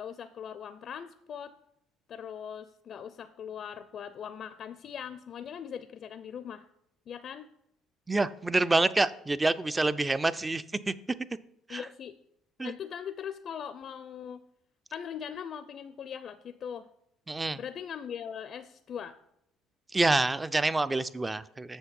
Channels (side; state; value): both; normal; correlation 0.92